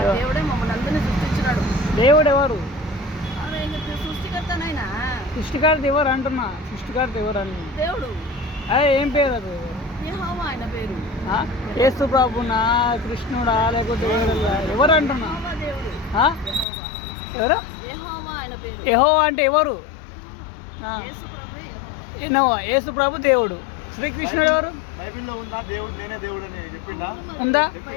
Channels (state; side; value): drops out; right; at 16.7 s